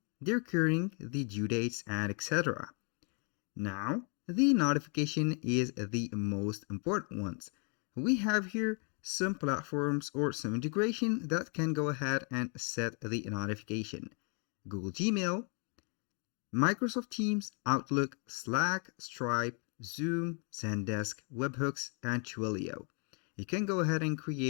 the recurring, the due dates, and etc. Now, the notification is the most important ones. We have here some platforms or some integration that can go ahead and set the notification. Google Gmail, Microsoft Teams, Outlook, Slack, Stripe, Zoom, Zendesk, Webhooks, and Twilio. You can go ahead and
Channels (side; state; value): right; quieter; 38.9 dB